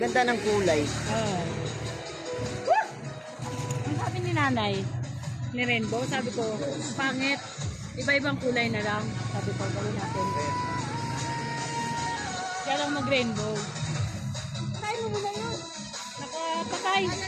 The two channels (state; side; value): identical; both; correlation 1.00